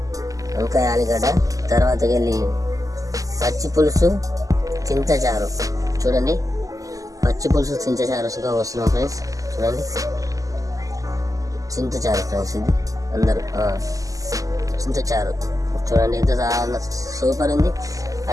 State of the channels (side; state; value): left; late; 0.17 ms